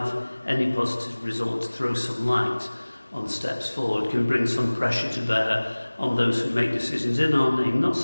any positive results, throw some light on steps forward, can bring some pressure to bear on those who make decisions in our name, not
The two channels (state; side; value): inverted; both; correlation -1.00